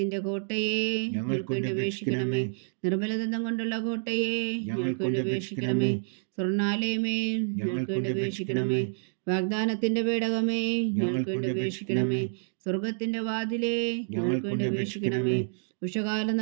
കോട്ടയെ, ഞങ്ങൾക്ക് വേണ്ടി അപേക്ഷിക്കണമേ. നിർമ്മലദന്തം കൊണ്ടുള്ള കോട്ടയെ, ഞങ്ങൾക്ക് വേണ്ടി അപേക്ഷിക്കണമേ. സ്വർണ്ണാലയമേ, ഞങ്ങൾക്ക് വേണ്ടി അപേക്ഷിക്കണമേ. വാഗ്ദാനത്തിന്റെ പേടകമേ, ഞങ്ങൾക്ക് വേണ്ടി അപേക്ഷിക്കണമേ. സ്വർഗത്തിന്റെ വാതിലേ, ഞങ്ങൾക്ക് വേണ്ടി അപേക്ഷിക്കണമേ. ഉഷകാല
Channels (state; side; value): silent; left; digital silence